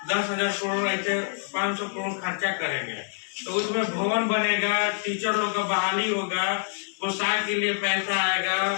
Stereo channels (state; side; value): silent; right; digital silence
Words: 10,000 करोड़ ऐसे 500 करोड़ खर्चा करेंगे, तो उसमें भवन बनेगा, टीचर लोग का बहाली होगा, पोशाक के लिए पैसा आएगा,